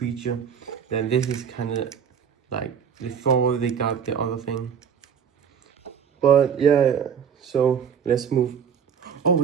Then this is kind of like before they got the other thing. But yeah, so let's move. Oh,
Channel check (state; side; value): quieter; left; 7.5 dB